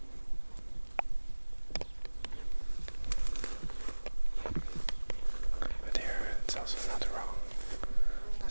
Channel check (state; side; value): inverted; both; correlation -1.00